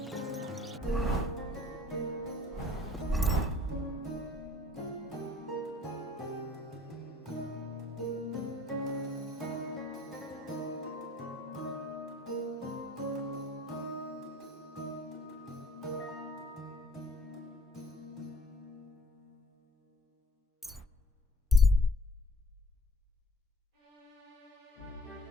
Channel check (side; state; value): both; normal; correlation 0.53